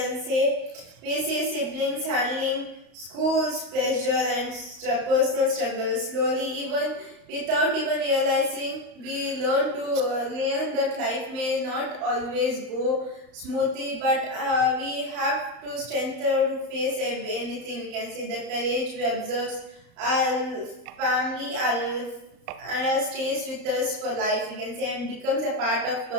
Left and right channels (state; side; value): late; left; 34 ms